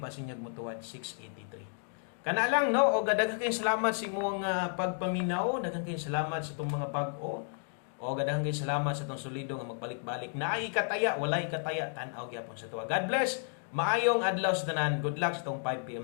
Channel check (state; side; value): silent; right; 56 dB below the other